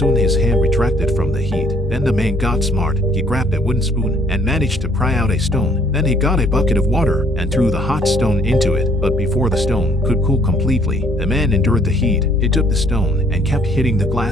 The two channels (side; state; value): both; normal; correlation 0.63